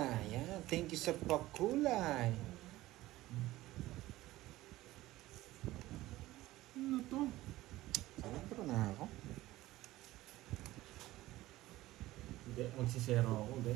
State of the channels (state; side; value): quieter; left; 16.9 dB